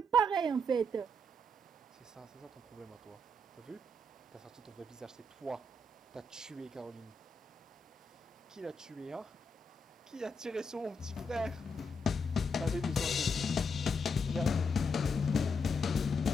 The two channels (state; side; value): normal; both; correlation 0.80